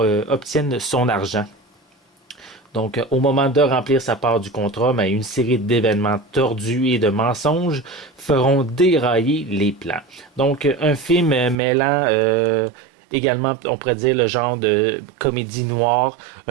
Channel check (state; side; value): drops out; left; at 11.6 s